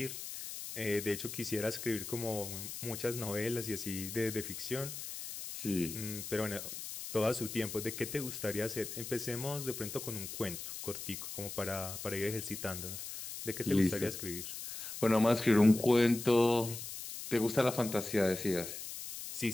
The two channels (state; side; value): noise; left; hiss, 8 dB below the sound